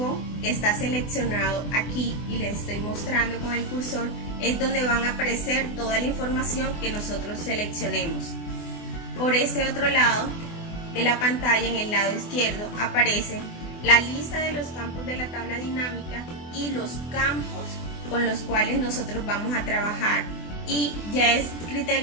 que está seleccionado aquí y les estoy mostrando con el cursor es donde van a aparecer toda la información que nosotros seleccionemos. Por este otro lado de la pantalla, en el lado izquierdo, aparece la lista de los campos de la tabla dinámica y los campos con los cuales nosotros vamos a trabajar, y ya es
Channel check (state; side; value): late; right; 24 ms